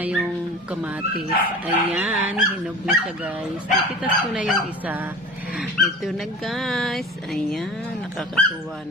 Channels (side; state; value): both; normal; correlation 0.37